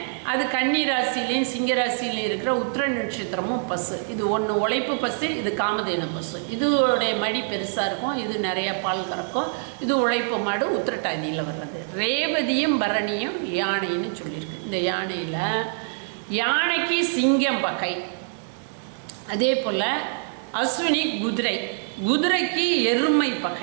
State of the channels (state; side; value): silent; left; digital silence